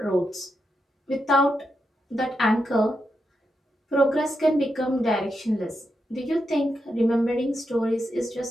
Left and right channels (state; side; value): normal; both; correlation 0.85